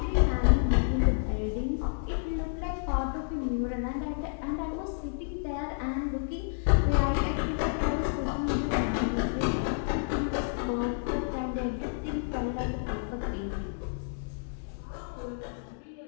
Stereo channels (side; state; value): right; silent; digital silence